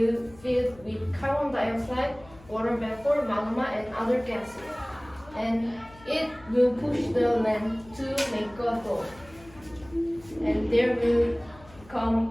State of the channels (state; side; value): noise; left; hum, 23 dB below the sound